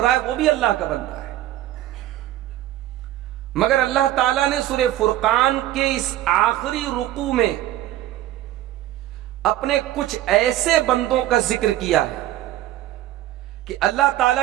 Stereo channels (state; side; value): quieter; left; 14.1 dB